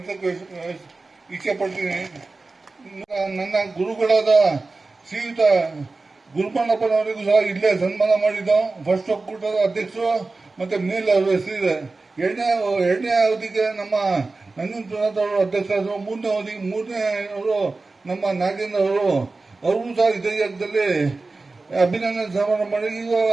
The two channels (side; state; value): left; quieter; 3.6 dB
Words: ಇಚ್ಛೆಪಡ್ತೀನಿ. ನನ್ನ ಗುರುಗಳಾದ ಶ್ರೀಯುತ ಗುರುಮಣ್ಣಪ್ಪನವರಿಗೂ ಸಹ ಇಲ್ಲೇ ಸನ್ಮಾನ ಮಾಡಿದ್ದು. ಫಸ್ಟ್ ಒಕ್ಕೂಟದ ಅಧ್ಯಕ್ಷರು ಮತ್ತೆ ಮೇಲೆ ಅವರ ಹೆಸರಿದೆ. ಎರಡನೇ ಅವಧಿಗೆ ನಮ್ಮ ನಂಜುಂಡಪ್ಪನವರು ಅಧ್ಯಕ್ಷರಾದರು. ಮೂರನೇ ಅವರು ನಮ್ಮ ನಾಗೇಂದ್ರ ಅವರು ಸಹ ಇದೇ ಜಾಗದಲ್ಲಿ ಅಭಿನಂದನೆ ಸಮಾರಂಭ ಮಾಡಿ